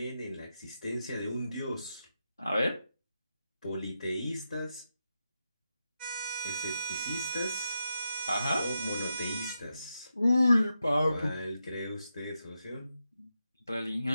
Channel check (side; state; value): both; inverted; correlation -0.87